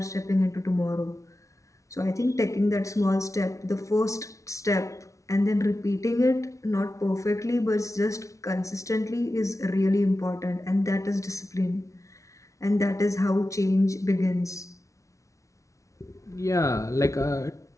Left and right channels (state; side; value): late; right; 0.15 ms